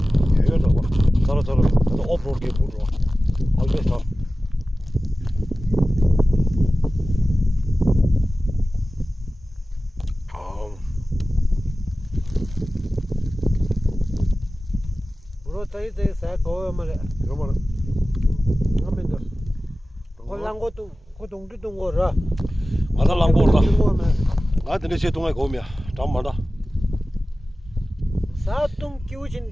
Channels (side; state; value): both; normal; correlation 0.96